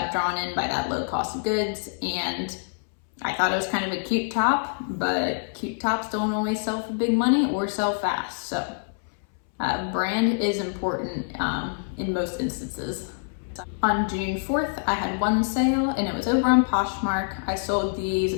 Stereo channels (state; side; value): silent; right; 61 dB below the other